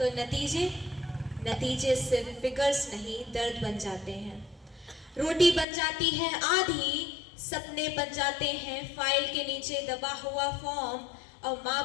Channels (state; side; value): drops out; right; at 5.7 s